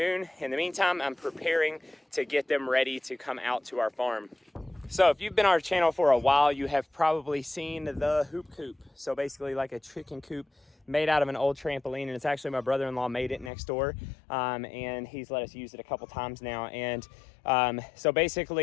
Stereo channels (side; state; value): right; drops out; at 13.5 s